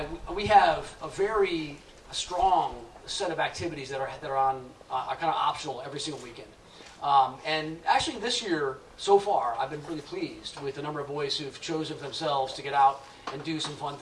We have a very strong set of activities that are on are kind of optional every single weekend. And actually this year, so far, I've been really pleased with the number of boys who've chosen themselves to get out and do some fun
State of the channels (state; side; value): identical; both; correlation 1.00